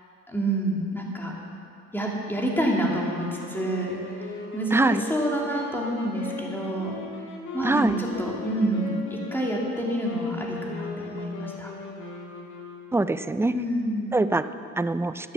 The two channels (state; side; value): normal; both; correlation 0.65